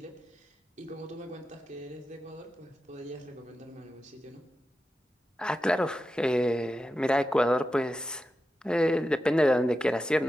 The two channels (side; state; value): both; normal; correlation 0.90